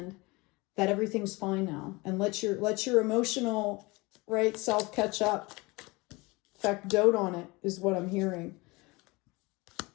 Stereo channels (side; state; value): right; quieter; 24.4 dB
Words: that everything's fine now, and let your emotional, right, self catch up. In fact, dote on it is what I'm hearing.